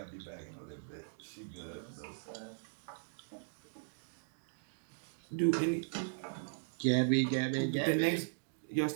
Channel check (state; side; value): silent; left; digital silence